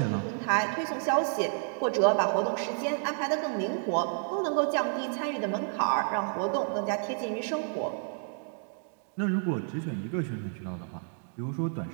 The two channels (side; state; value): left; silent; 58 dB below the other